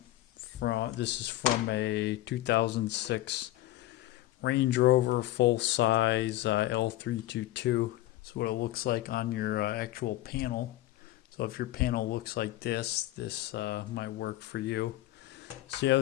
This is from a 2006 Range Rover full-size L322. That's what it looks like on your actual panel. So if your panel looks like this, might work for you. So yeah,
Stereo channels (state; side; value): quieter; right; 15.6 dB